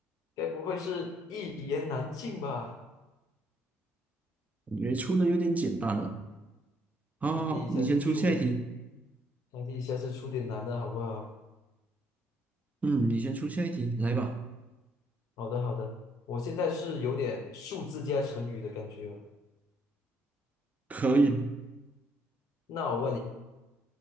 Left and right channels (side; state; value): both; normal; correlation 0.71